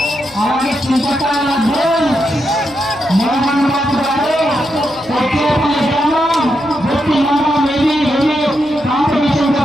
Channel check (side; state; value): left; noise; hum, 25 dB below the sound